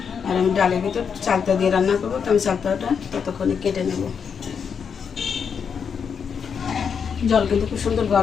আর আমি ডালের ভিতর চালতা দিয়ে রান্না করবো, তো আমি চালতাটা ততক্ষণে কেটে নেব। জল কিন্তু খুব সুন্দর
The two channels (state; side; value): quieter; right; 6.7 dB